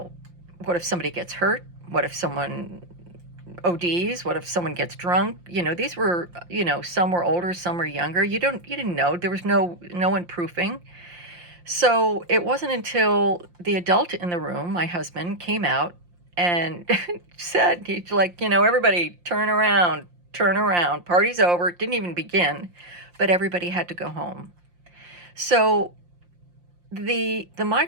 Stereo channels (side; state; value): left; late; 5.7 ms